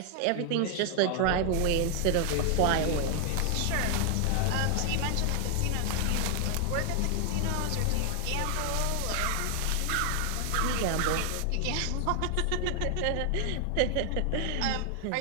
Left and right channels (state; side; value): different; both; correlation 0.00